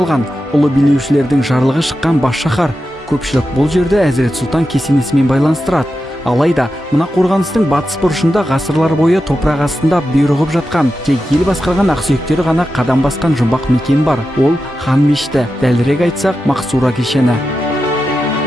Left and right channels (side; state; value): both; normal; correlation 0.90